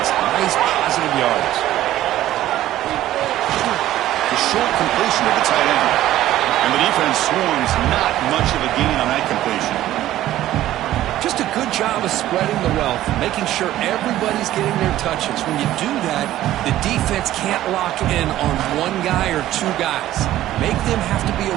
some nice positive yards. The short completion of the tight end. And the defense swarms not much of a gain on that completion. Just a good job of spreading the wealth, making sure everybody's getting their touches. When you do that, the defense can't lock in on one guy or two guys. Make them have to be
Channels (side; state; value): left; quieter; 13.9 dB